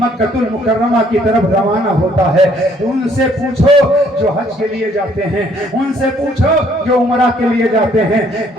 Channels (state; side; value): normal; both; correlation 0.64